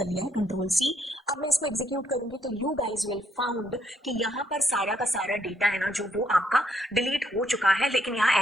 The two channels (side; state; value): both; normal; correlation 0.73